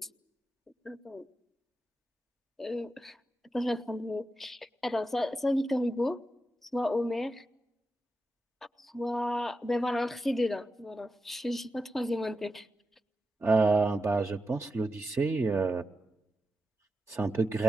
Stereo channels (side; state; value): both; normal; correlation 0.89